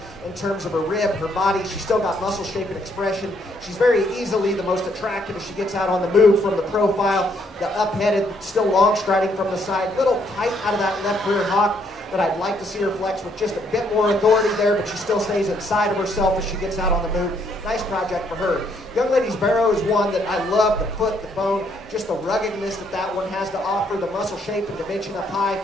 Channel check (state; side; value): normal; both; correlation 0.70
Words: in terms of her rib, her body. She's still got muscle shape and expression. She's very easily the most attractive as she gets out on the move from the profile. The up-headed, still long striding from the side. Little tight out of that left rear hock that I'd like to see her flex with just a bit more authority there, but she still stays inside of herself as she gets out on the move. Nice project for her. Young lady's barrow is one that I love. The foot, the bone, just the ruggedness that one has to offer, the muscle shape and dimension up high,